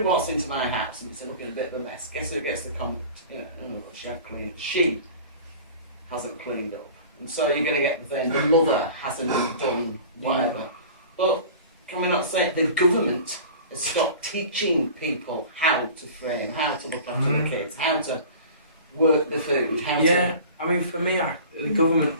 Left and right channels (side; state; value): both; inverted; correlation -0.41